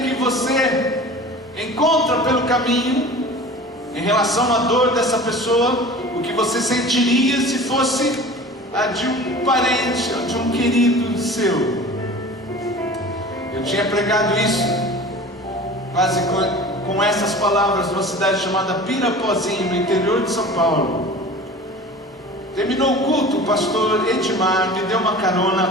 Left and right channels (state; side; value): normal; both; correlation 0.39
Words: que você encontra pelo caminho, em relação à dor dessa pessoa, o que você sentiria se fosse a de um parente, ou de um querido seu. Eu tinha pregado isso quase com essas palavras numa cidade chamada Pirapozinho, no interior de São Paulo. Terminou o culto, o pastor Edmar me deu uma